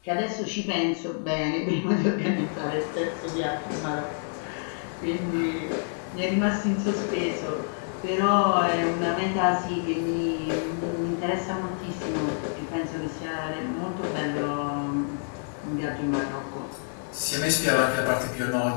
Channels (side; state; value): right; silent; digital silence